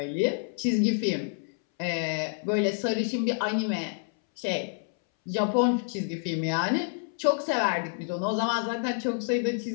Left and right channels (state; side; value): silent; right; 59 dB below the other